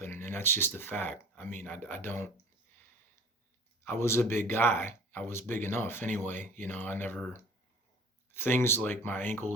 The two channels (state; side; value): normal; both; correlation 0.45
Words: and that's just a fact. I mean, I don't. I was a big guy. I was big enough anyway. I never things like my